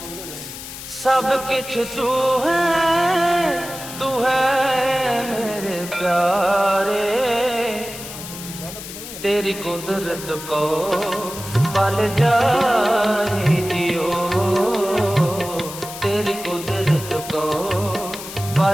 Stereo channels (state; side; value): noise; left; hiss, 11 dB below the sound